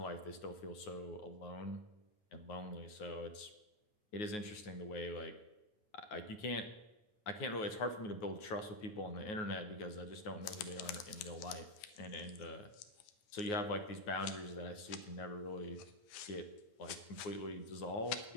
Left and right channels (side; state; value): right; late; 9.5 ms